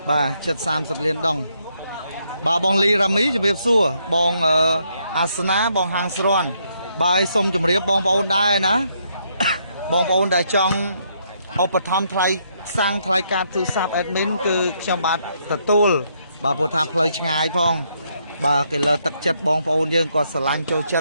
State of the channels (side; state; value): both; inverted; correlation -0.74